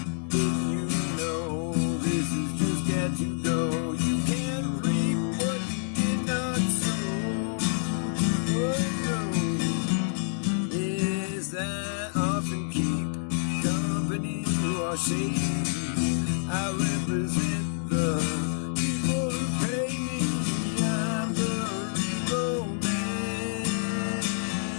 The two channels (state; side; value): silent; right; digital silence